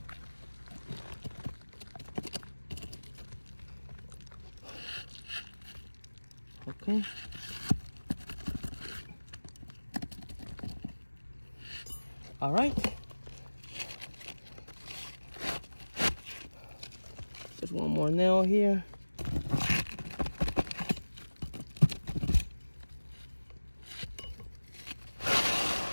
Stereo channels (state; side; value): inverted; both; correlation -1.00